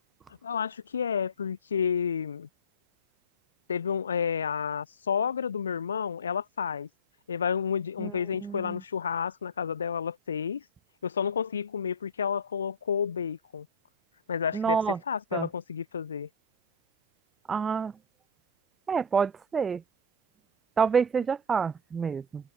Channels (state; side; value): normal; both; correlation -0.14